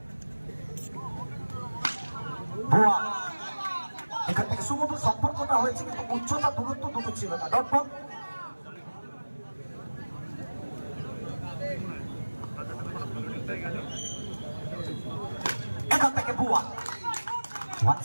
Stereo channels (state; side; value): inverted; both; correlation -1.00